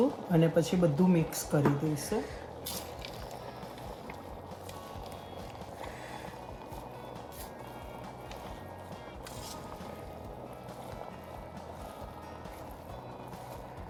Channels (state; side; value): identical; both; correlation 1.00